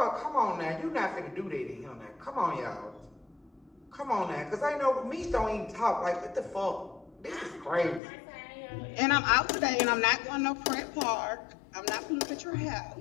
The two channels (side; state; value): right; drops out; at 8.0 s